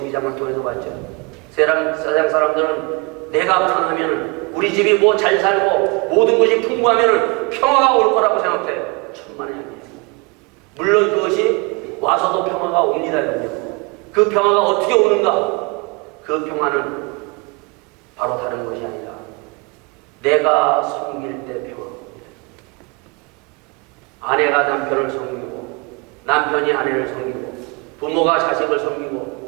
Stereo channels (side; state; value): left; quieter; 28.0 dB